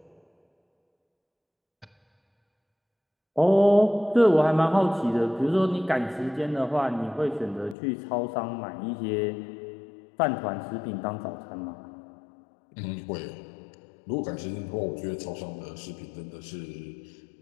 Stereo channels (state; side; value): drops out; right; at 7.8 s